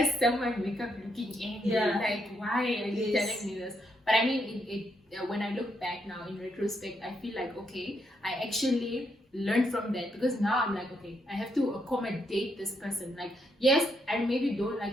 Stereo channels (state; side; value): normal; both; correlation 0.77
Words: someone wake up looking angry? Yeah. Like, why are you telling me this? But I mean, when I look back now in retrospect, I feel like, okay, I actually learned from that, because now I'm like, okay, I have to accommodate this person. Like, yes, I maybe don't